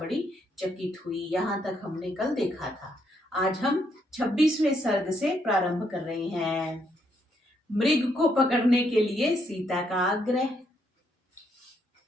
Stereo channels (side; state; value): both; normal; correlation 0.74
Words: चकित हुई। यहाँ तक हमने कल देखा था। आज हम 26वें सर्ग से प्रारंभ कर रहे हैं। मृग को पकड़ने के लिए सीता का आग्रह।